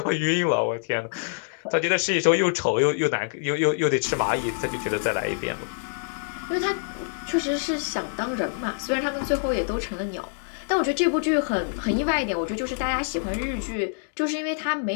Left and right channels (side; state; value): right; silent; digital silence